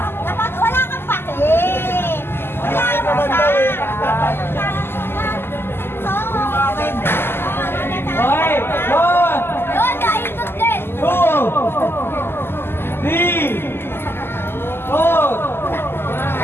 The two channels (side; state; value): right; late; 0.11 ms